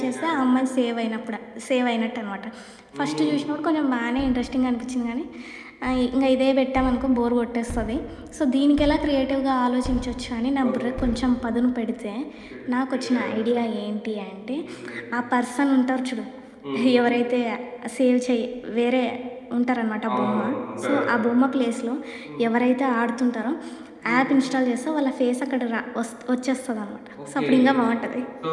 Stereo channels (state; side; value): identical; both; correlation 1.00